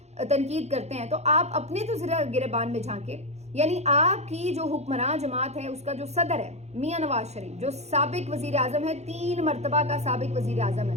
تنقید کرتے ہیں, تو آپ اپنے تو ذرا گریبان میں جھانکے. یعنی آپ کی جو حکمران جماعت ہے اس کا جو صدر ہے میاں نواز شریف جو سابق وزیر اعظم ہے, 3 مرتبہ کا سابق وزیر اعظم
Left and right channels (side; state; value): left; late; 0.32 ms